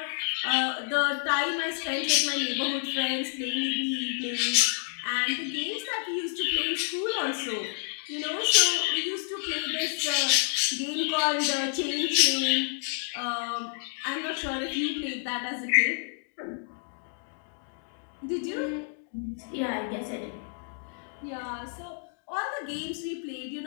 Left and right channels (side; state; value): right; silent; 58 dB below the other